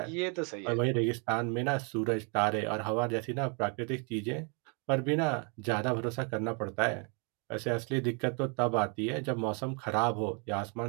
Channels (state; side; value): quieter; left; 36.0 dB